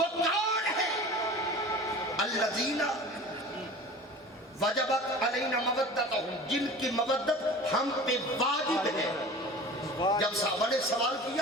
کون ہے؟ الذین وجبت علینا مودتہم، جن کی مودت ہم پہ واجب ہے. جب صحابہ نے سوال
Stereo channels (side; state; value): both; normal; correlation 0.39